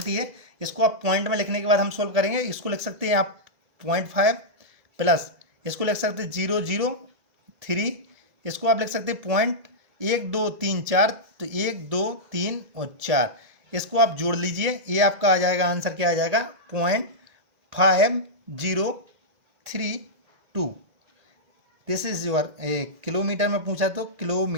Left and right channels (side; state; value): left; late; 2.0 ms